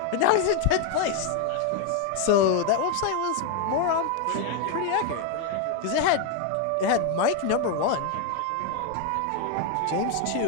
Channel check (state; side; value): different; both; correlation 0.01